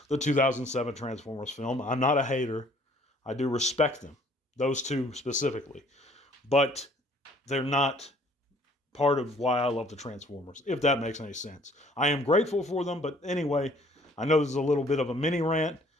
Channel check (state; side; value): normal; both; correlation 0.58